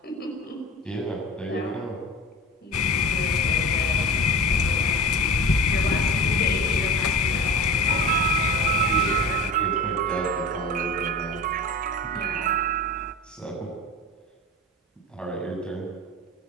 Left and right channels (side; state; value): both; normal; correlation 0.33